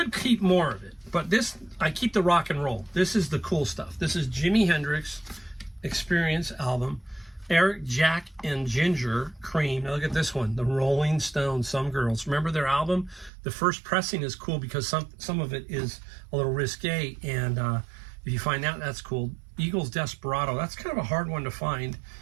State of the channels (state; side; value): drops out; left; at 13.3 s